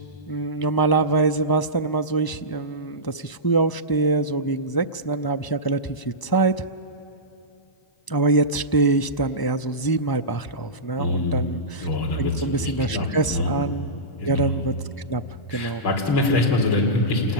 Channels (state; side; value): late; right; 1.0 ms